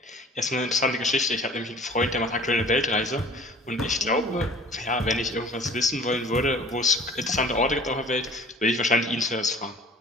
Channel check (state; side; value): normal; both; correlation 0.47